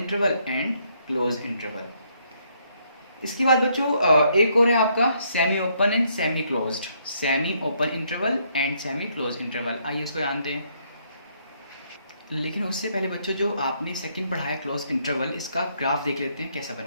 and close interval. इसके बाद बच्चों एक और है आपका semi open and semi closed, semi open interval and semi close interval. आइए इसको जानते हैं, लेकिन उससे पहले बच्चों जो आपने सेकंड पढ़ा है क्लोज इंटरवल, इसका ग्राफ देख लेते हैं कैसा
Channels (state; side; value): inverted; both; correlation -0.71